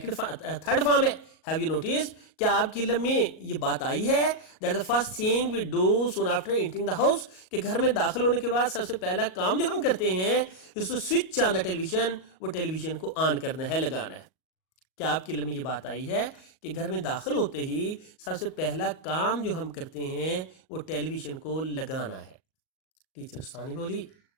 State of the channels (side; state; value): right; late; 38 ms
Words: فارم ہے. ہیو یو نوٹس, کیا آپ کے علم میں یہ بات آئی ہے؟ That the first thing we do soon after entering the house, کہ گھر میں داخل ہونے کے بعد سب سے پہلا کام جو ہم کرتے ہیں اس کو switch on the tele vision, وہ ٹیلی ویژن کو آن کرنا ہے, لگانا ہے. کیا آپ کے علم میں یہ بات آئی ہے کہ گھر میں داخل ہوتے ہی سب سے پہلا کام جو ہم کرتے ہیں وہ ٹیلی ویژن کو لگانا ہے؟ ٹیچر ثانی بولی